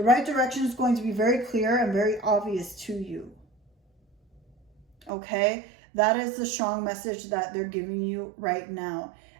right direction is going to be very clear and very obvious to you. Okay? That is the strong message that they're giving you right now.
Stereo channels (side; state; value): left; drops out; at 5.1 s